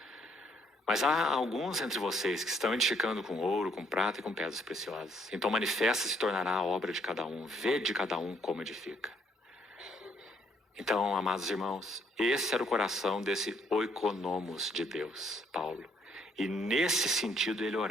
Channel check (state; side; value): normal; both; correlation 0.68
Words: Mas há alguns entre vocês que estão edificando com ouro, com prata e com pedras preciosas. Então manifesta se tornará a obra de cada um. Vê de cada um como edifica. Então, amados irmãos, esse era o coração desse oikonomos de Deus, Paulo. E nesse sentido ele